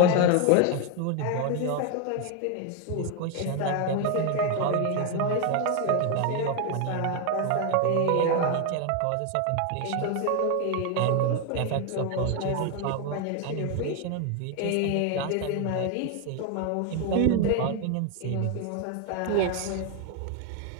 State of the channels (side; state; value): both; different; correlation 0.01